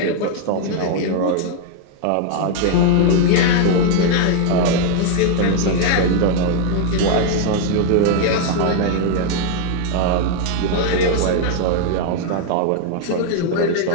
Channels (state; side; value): different; both; correlation 0.00